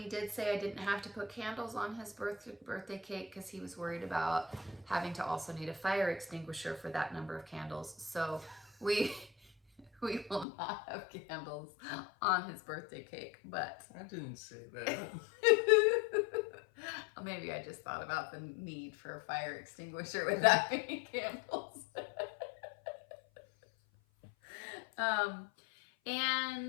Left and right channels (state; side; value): drops out; right; at 10.5 s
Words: did say I didn't have to put candles on his birthday cake because he was worried about having to also need a fire extinguisher for that number of candles. So we will not have candles on his birthday cake, but I didn't say that. maybe I just thought about the need for a fire extinguisher with that many candles.